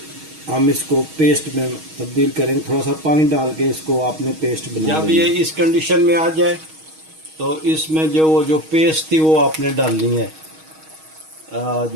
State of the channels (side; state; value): left; late; 6.3 ms